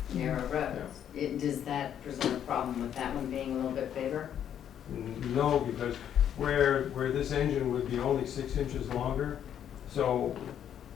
narrow roads, does that present a problem with that one being a little bit bigger? No, because where this engine would be only 6 inches longer, so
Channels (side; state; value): right; quieter; 9.6 dB